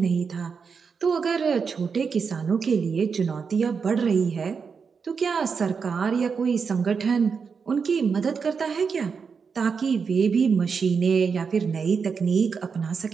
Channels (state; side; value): quieter; left; 5.7 dB